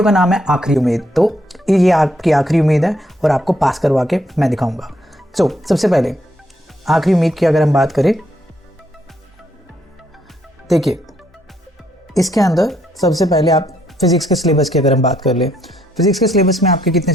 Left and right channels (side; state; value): both; normal; correlation 0.73